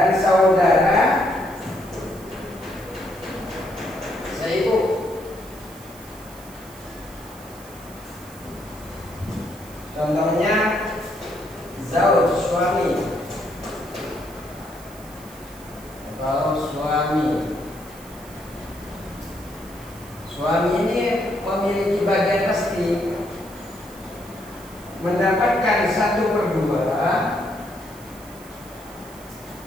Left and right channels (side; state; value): right; noise; hiss, 20 dB below the sound